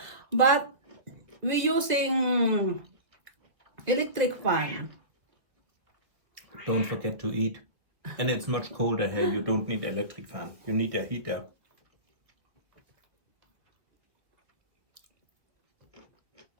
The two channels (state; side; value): late; left; 1.6 ms